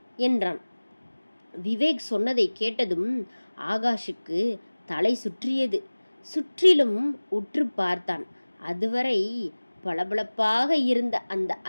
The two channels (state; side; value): inverted; both; correlation -1.00